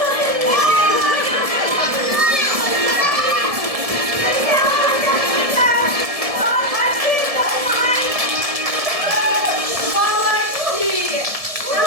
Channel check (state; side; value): late; left; 1.7 ms